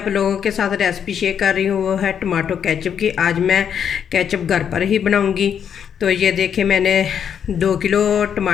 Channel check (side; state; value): right; quieter; 8.1 dB